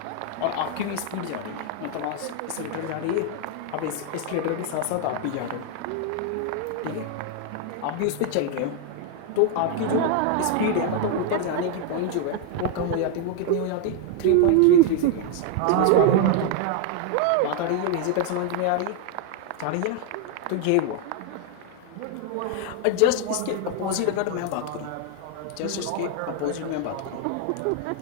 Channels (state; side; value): different; both; correlation 0.00